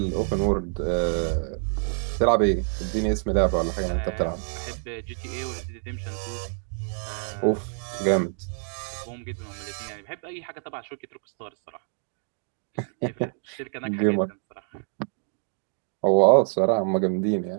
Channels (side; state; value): left; silent; digital silence